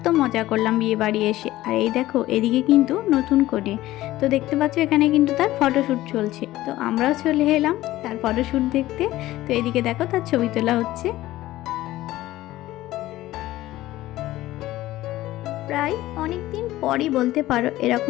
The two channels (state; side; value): quieter; right; 16.0 dB